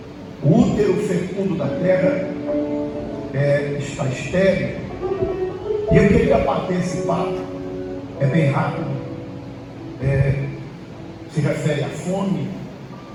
O útero fecundo da terra está estéril. E eu queria bater esse papo, é bem rápido, se refere à fome.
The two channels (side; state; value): both; identical; correlation 1.00